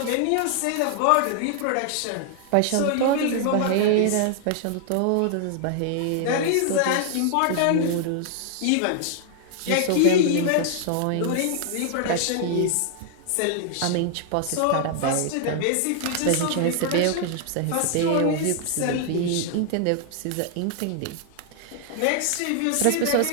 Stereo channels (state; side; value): different; both; correlation 0.00